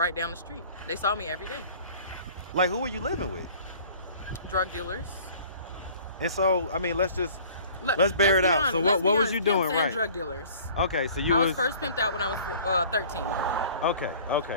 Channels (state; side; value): inverted; both; correlation -0.49